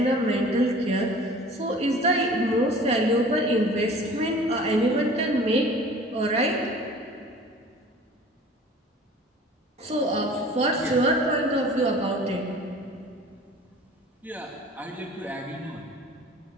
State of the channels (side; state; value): both; normal; correlation 0.46